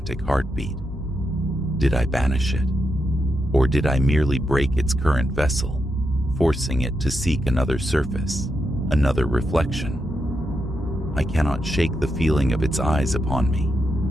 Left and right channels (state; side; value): normal; both; correlation 0.84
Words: heartbeat. Did I banish it? Or did I merely break its current vessel, forcing it to seek another surface, another reflection? I cannot shake the feeling of its eyes upon me,